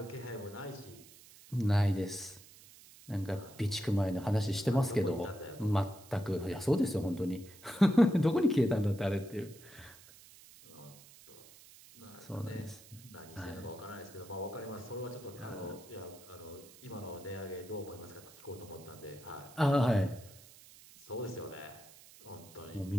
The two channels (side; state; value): right; noise; hiss, 21 dB below the sound